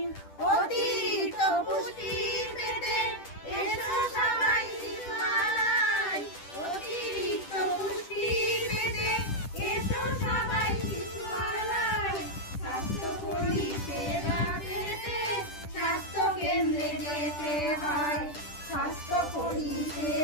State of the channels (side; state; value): right; late; 10 ms